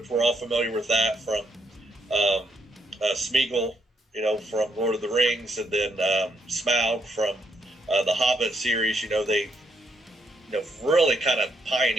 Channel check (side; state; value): both; normal; correlation 0.75